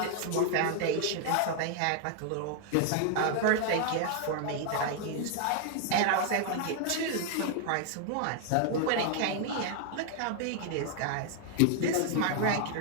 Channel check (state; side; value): different; both; correlation 0.00